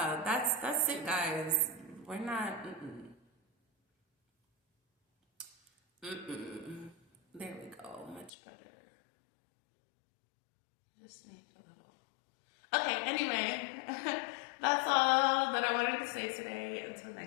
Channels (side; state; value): right; drops out; at 8.3 s